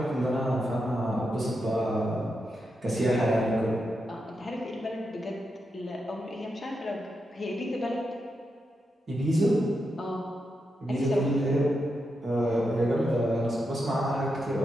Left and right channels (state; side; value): normal; both; correlation 0.86